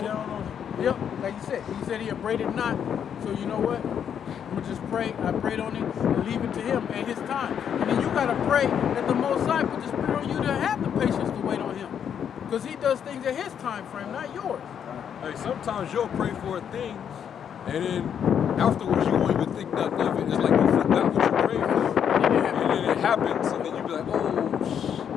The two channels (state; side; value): quieter; right; 8.4 dB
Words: on it. Yep, like you said. He said he upbraided not. So you know what? I'm gonna just pray. I prayed on it and leave it to him at his time. And then you gotta pray that the Most High put the Spirit on you to have the patience to wait on him. Because he does things at his time frame, not yours. Hey, sometimes you'll pray for things, and then afterwards you won't even think nothing of it. It's like you forgot what you prayed for, and then it happens, and then you be like,